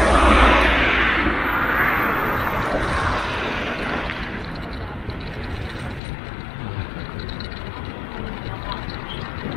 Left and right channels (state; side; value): drops out; right; at 6.0 s